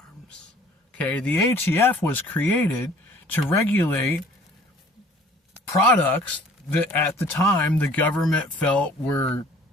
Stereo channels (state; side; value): normal; both; correlation 0.53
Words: Okay? The ATF was created to regulate products that at the time the government felt were